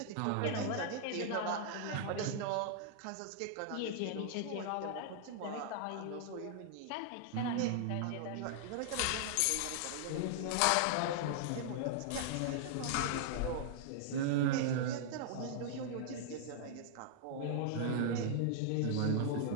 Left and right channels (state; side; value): different; both; correlation -0.01